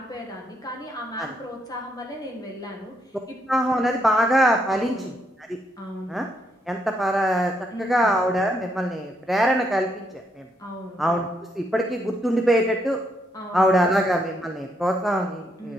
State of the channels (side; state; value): both; normal; correlation 0.76